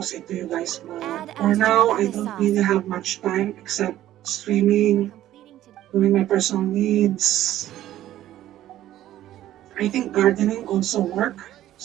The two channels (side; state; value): left; quieter; 13.3 dB